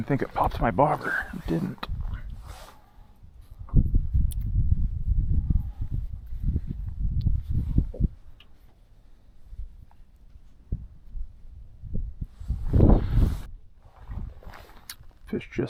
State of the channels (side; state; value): both; identical; correlation 1.00